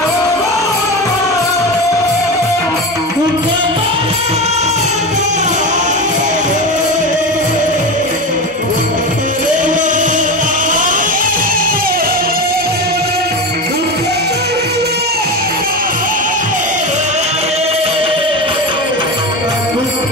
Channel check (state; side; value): normal; both; correlation 0.22